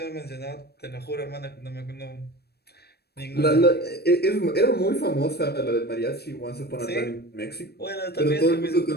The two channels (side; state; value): right; late; 0.47 ms